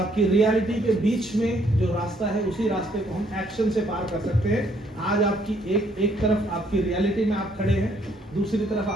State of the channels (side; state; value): both; normal; correlation 0.67